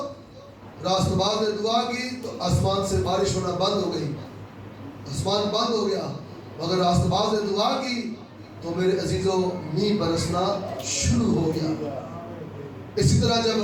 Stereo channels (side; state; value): both; identical; correlation 1.00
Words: راست باز نے دعا کی تو آسمان سے بارش ہونا بند ہو گئی، آسمان بند ہو گیا، مگر راست باز نے دعا کی تو میرے عزیزو مینہ برسنا شروع ہو گیا۔ اسی طرح